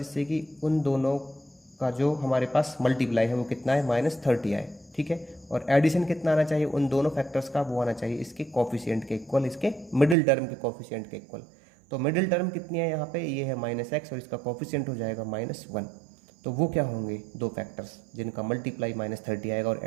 कि उन दोनों का जो हमारे पास मल्टीप्लाई है वो कितना है, -30 आए। ठीक है, और एडिशन कितना आना चाहिए, उन दोनों फैक्टर्स का वो आना चाहिए इसके कोफिशिएंट के इक्वल, इसके मिडिल टर्म के कोफिशिएंट के इक्वल। तो मिडिल टर्म कितनी है यहाँ पे, ये है -x और इसका कोफिशिएंट हो जाएगा -1। तो वो क्या होंगे, दो फैक्टर्स जिनका मल्टीप्लाई -30 आएगा और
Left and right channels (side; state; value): left; drops out; at 10.2 s